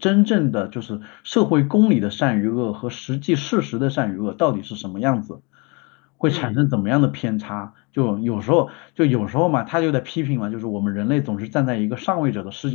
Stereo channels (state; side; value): quieter; right; 30.0 dB